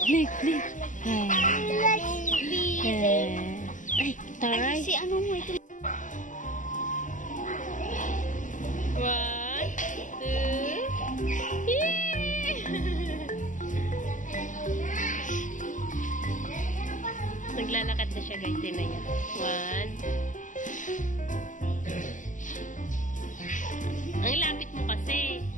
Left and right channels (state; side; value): late; right; 0.37 ms